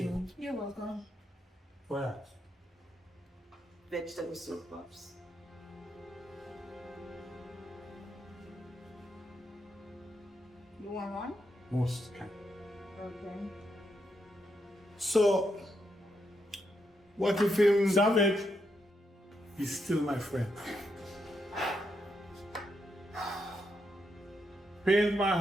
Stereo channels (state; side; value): normal; both; correlation 0.81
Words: You're welcome. What? Vegetable soup, Pops. You want one? Most can. Okay. So, what if him... Savage, he's still my friend. Pains my